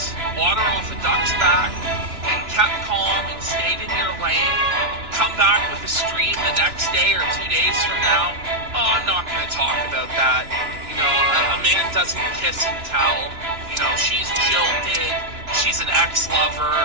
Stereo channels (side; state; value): left; late; 2.9 ms